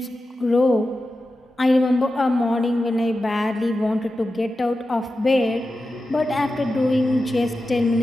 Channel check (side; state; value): both; normal; correlation 0.92